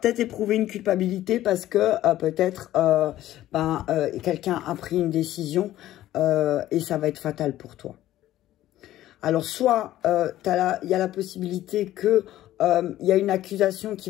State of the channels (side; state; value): right; quieter; 14.0 dB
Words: éprouver une culpabilité parce que peut-être quelqu'un a pris une décision et ça va être fatal pour toi. Alors, soit il y a la possibilité que il y a une accusation qui